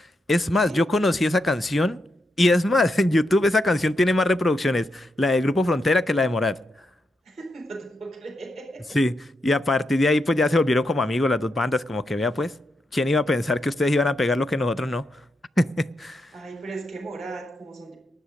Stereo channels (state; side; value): normal; both; correlation 0.84